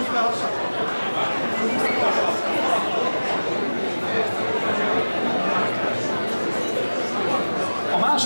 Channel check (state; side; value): inverted; both; correlation -1.00